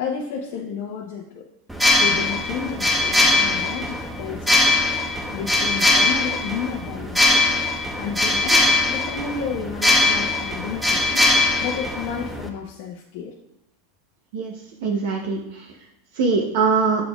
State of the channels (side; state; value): both; normal; correlation 0.53